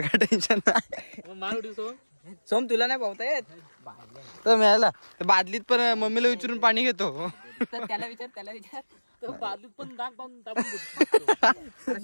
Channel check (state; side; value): inverted; both; correlation -1.00